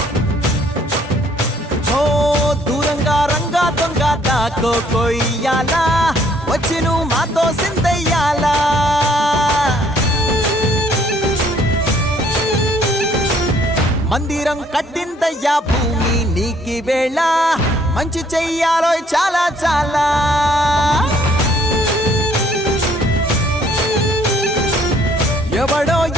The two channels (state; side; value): normal; both; correlation 0.63